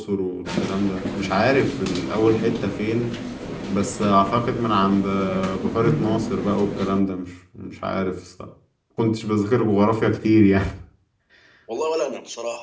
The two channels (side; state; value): both; identical; correlation 1.00